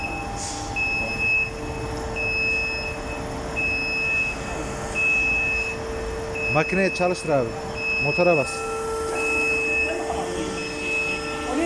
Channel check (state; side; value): identical; both; correlation 1.00